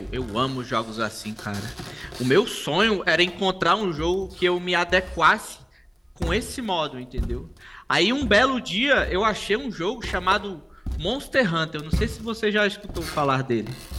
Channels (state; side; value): identical; both; correlation 1.00